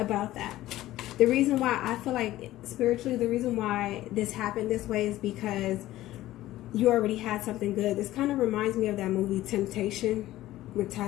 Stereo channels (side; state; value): right; quieter; 15.3 dB